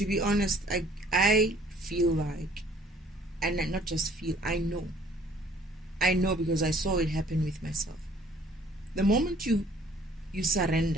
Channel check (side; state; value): both; normal; correlation 0.57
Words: be honest, I feel like, and not just feel, I know because I saw it happen with myself. The moment you